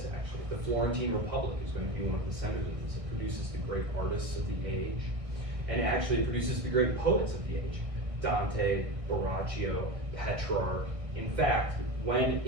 actually. The Florentine Republic is going to be one of the centers of this. It produces the great artists of the age, and actually it produces the great poets of the age. Dante, Boccaccio, Petrarch. In fact, when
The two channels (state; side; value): late; left; 1.6 ms